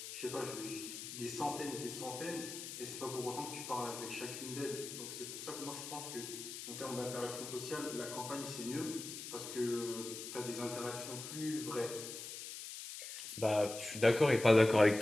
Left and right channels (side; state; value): left; noise; hiss, 9 dB below the sound